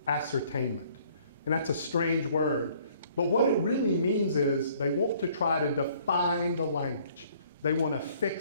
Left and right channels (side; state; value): both; inverted; correlation -0.60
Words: ascertainment. And that's a strange word. But what it really means is they want to try to define the language. They want to